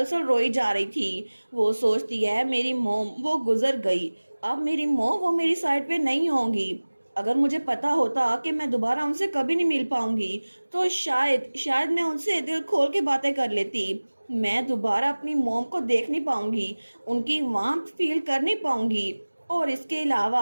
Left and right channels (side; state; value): both; inverted; correlation -1.00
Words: रोई जा रही थी। वो सोचती है मेरी मोम वो गुजर गई, अब मेरी मोम वो मेरी साइड पे नहीं होंगी। अगर मुझे पता होता कि मैं दोबारा उनसे कभी नहीं मिल पाऊंगी तो शायद शायद मैं उनसे दिल खोल के बातें कर लेती। मैं दोबारा अपनी मोम को देख नहीं पाऊंगी, उनकी वार्मथ फील कर नहीं पाऊंगी। और इसके